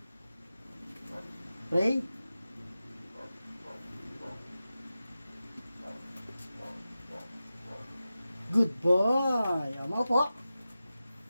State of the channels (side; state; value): both; inverted; correlation -0.93